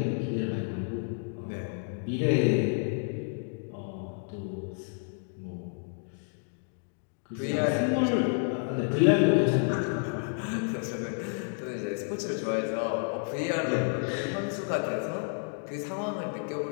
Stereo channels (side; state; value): right; silent; 58 dB below the other